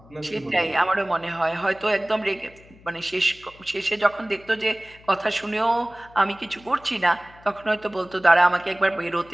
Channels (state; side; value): noise; left; hum, 25 dB below the sound